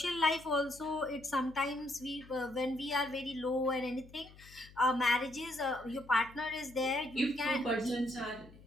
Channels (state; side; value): noise; left; hum, 21 dB below the sound